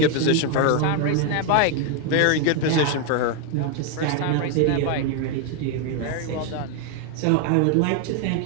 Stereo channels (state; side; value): different; both; correlation 0.01